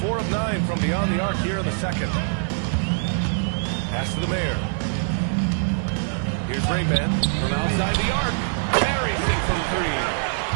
of 9 from beyond the arc here in the second. Pass to the mayor. Here's Rainman from outside the arc. Buries it from 3.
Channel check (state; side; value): silent; left; digital silence